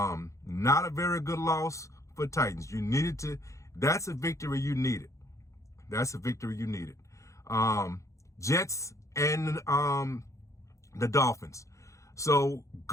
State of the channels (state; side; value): late; right; 0.15 ms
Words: a very good loss for Titans. You needed to. That's a victory you needed. That's a victory you needed. Jets and the Dolphins. So